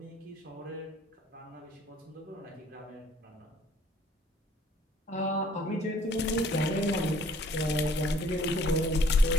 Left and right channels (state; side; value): normal; both; correlation 0.59